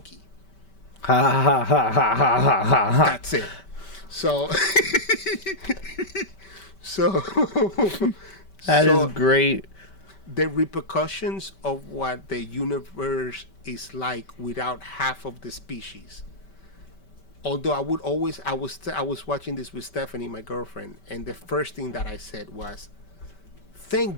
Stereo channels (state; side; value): late; right; 5.2 ms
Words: Ha ha ha ha ha ha ha ha. That's it. So, so, That so is great. the repercussions of what the universe is like without half of the species. Although I was watching this with Stephanie, my girlfriend, and the first thing that I said was,